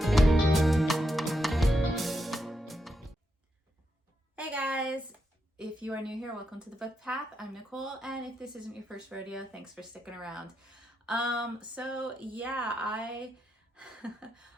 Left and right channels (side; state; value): both; normal; correlation 0.83